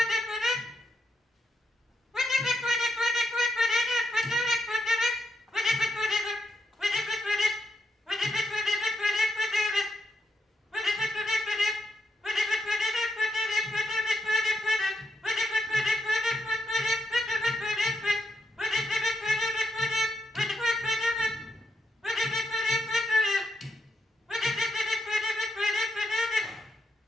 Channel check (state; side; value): normal; both; correlation 0.82